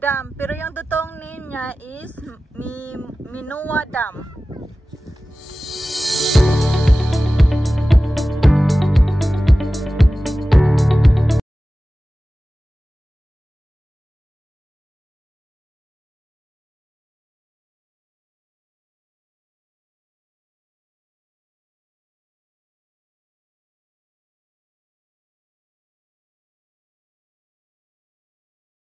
pero yung totoong name niya is Mimowa Dam.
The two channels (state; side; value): normal; both; correlation 0.96